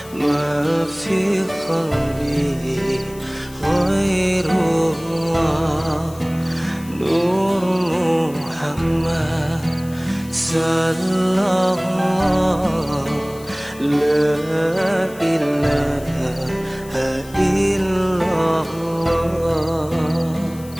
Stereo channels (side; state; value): left; noise; hiss, 20 dB below the sound